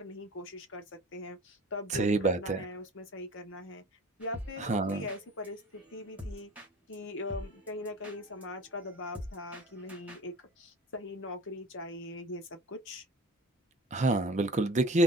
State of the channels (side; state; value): both; normal; correlation 0.42